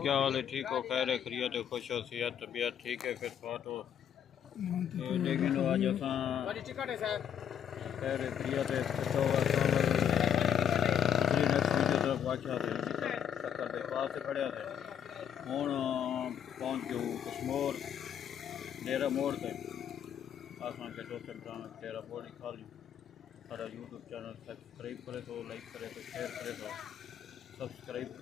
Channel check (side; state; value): right; quieter; 8.8 dB